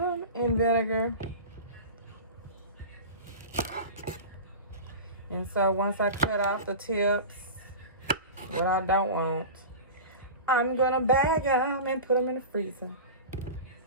in vinegar. And so once I cut off the tips, what I don't want, I'm gonna bag them and put them in the freezer.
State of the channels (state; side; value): inverted; both; correlation -0.31